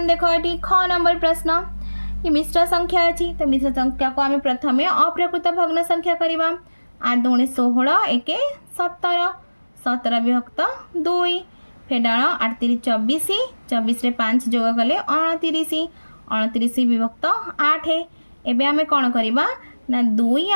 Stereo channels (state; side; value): inverted; both; correlation -1.00